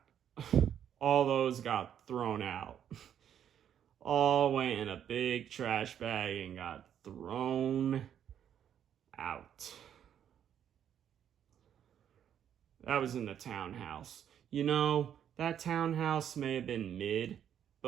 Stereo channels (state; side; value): quieter; left; 9.4 dB